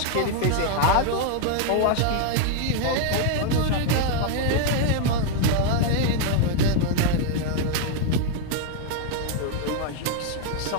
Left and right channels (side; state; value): both; different; correlation 0.00